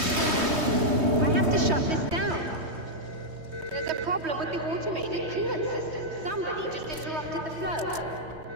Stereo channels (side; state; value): left; late; 3.2 ms